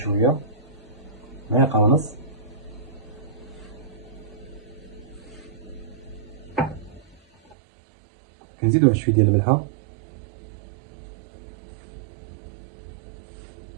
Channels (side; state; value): left; drops out; at 7.6 s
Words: معلقه ونص، كنزيدو واحد شويه ديال الملحه،